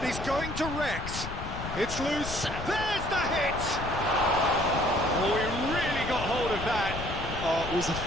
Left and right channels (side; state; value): left; noise; rumble, 8 dB below the sound